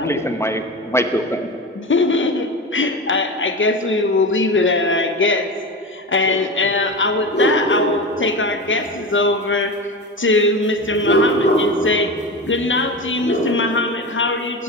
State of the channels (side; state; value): both; normal; correlation 0.25